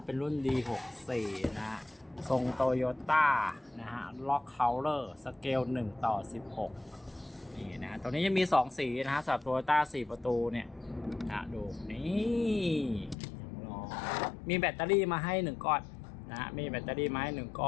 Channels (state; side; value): drops out; right; at 13.2 s